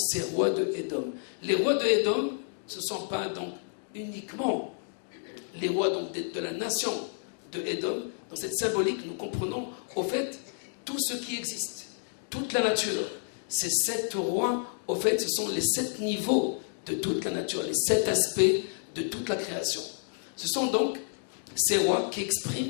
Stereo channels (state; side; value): silent; right; digital silence